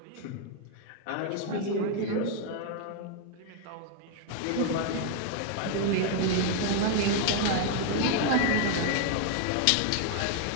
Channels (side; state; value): both; different; correlation 0.00